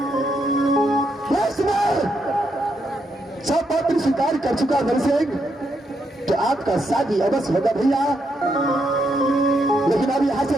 सब बात स्वीकार कर चुका मेरे से तो आपका शादी अवश्य होगा भैया, लेकिन अब यहां से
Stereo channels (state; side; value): normal; both; correlation 0.79